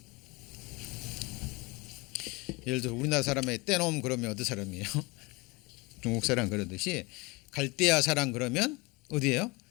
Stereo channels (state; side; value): quieter; right; 25.7 dB